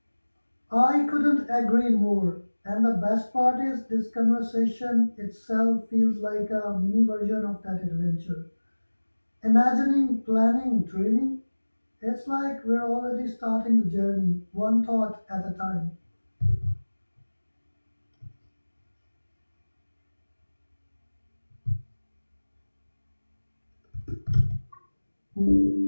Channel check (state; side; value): inverted; both; correlation -1.00